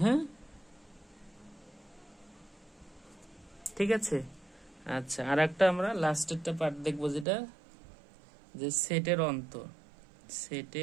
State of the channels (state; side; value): drops out; left; at 7.2 s